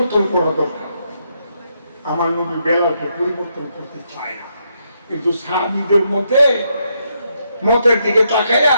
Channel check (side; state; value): both; inverted; correlation -0.78